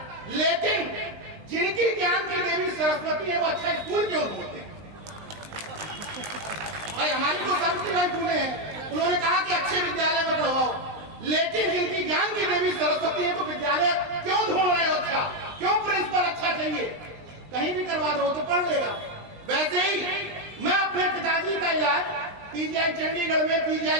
लेकिन जिनकी ज्ञान की देवी सरस्वती है वो अच्छा स्कूल क्यों ढूंढते हैं? भाई हमारी तो सावित्रीबाई फुले हैं, उन्होंने कहा कि अच्छे विद्यालय में पढ़वाओ, लेकिन जिनकी ज्ञान की देवी सरस्वती है तो विद्यालय क्यों ढूंढ रहे हो? अच्छा क्यों प्रिंसिपल अच्छा चाहिए? कहीं भी करवा दो तो पढ़ लेगा। वैसे ही मैं अपने पिताजी का इलाज पीजीआई चंडीगढ़ में,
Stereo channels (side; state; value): left; late; 19 ms